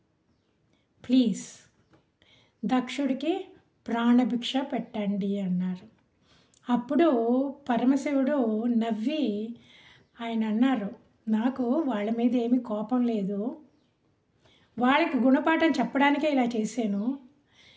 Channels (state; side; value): identical; both; correlation 1.00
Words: ప్లీజ్ దక్షుడికి ప్రాణభిక్ష పెట్టండి అన్నారు. అప్పుడు పరమశివుడు నవ్వి ఆయన అన్నారు, నాకు వాళ్ళ మీద ఏమీ కోపం లేదు, వాళ్ళకి గుణపాఠం చెప్పడానికే ఇలా చేశాను.